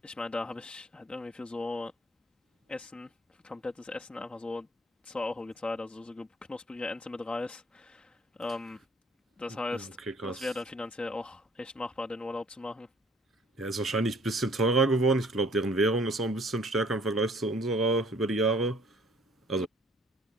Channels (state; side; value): normal; both; correlation 0.57